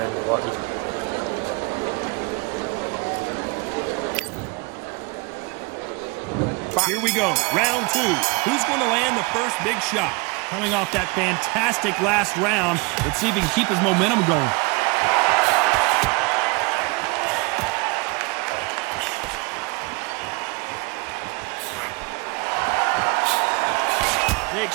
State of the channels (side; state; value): left; quieter; 28.2 dB